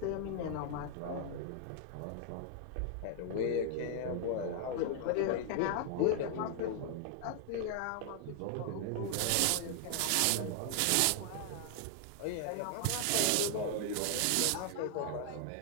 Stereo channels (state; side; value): different; both; correlation 0.00